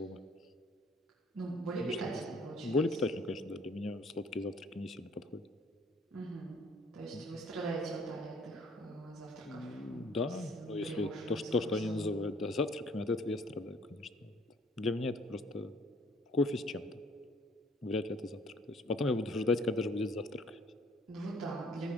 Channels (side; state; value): both; normal; correlation 0.58